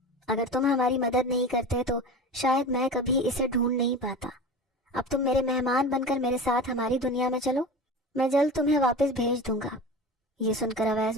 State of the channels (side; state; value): both; normal; correlation 0.32